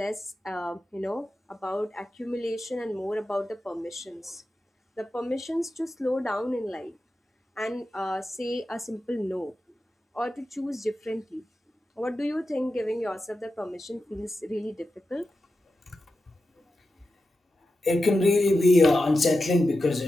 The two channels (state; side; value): normal; both; correlation 0.91